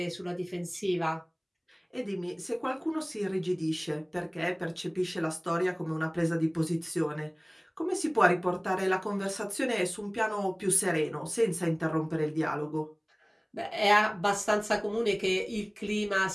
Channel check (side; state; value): both; identical; correlation 1.00